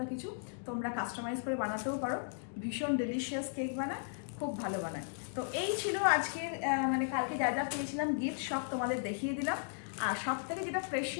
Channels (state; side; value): silent; right; digital silence